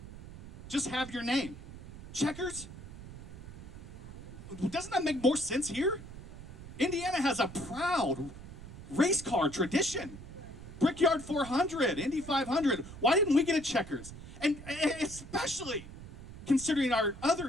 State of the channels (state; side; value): noise; right; rumble, 13 dB below the sound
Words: Just have your name. Checkers? Doesn't that make more sense here? Indiana has a proud race car tradition. Brickyard 400, Indy 500. Why didn't we get a checkers? And especially considering our other